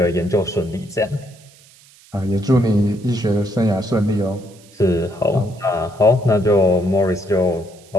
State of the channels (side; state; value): right; noise; hiss, 26 dB below the sound